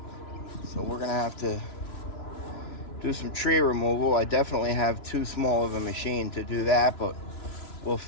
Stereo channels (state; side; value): late; right; 2.9 ms